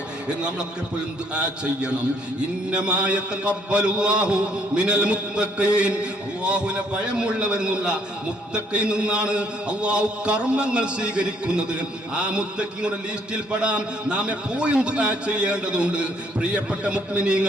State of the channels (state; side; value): normal; both; correlation 0.65